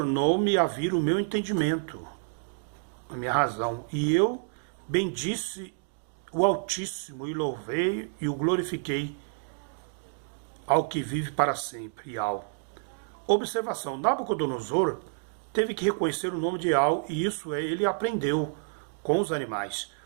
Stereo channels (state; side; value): silent; left; digital silence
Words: a vir o meu entendimento, a minha razão. E eu bendisse o Altíssimo e louvei e o glorifiquei ao que vive para sempre, Yal. Observação, Nabucodonosor teve que reconhecer o nome de Yal e isso ele aprendeu com os animais,